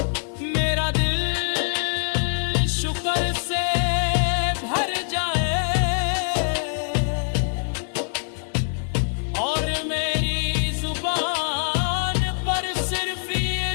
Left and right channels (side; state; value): right; silent; 58 dB below the other